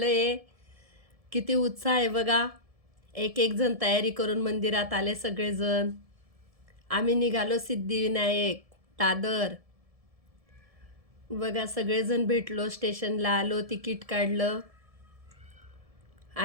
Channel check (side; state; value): left; late; 1.7 ms